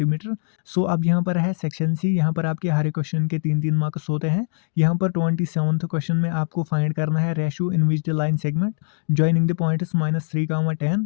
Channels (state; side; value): silent; right; digital silence